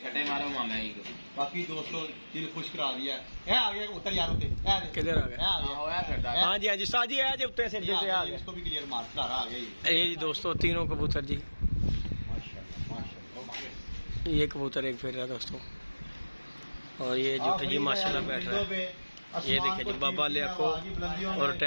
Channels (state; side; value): inverted; both; correlation -1.00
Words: मारो मामा ही को। बाकी दोस्तों दिल खुश करा दिया है। आ गया उतर यार उते किधर आ गया? हाँ जी हाँ जी साजी है जी उत्ते से आ गया। इसको भी क्लियर मार आ गया ये जी दोस्तों तीनों कबूतर जी। माशाल्लाह माशाल्लाह। ये कबूतर एक फिर रहा है दोस्तों और ये जो जी माशाल्लाह बैठ रहा है। ये देखिए जी बाबा लियाको और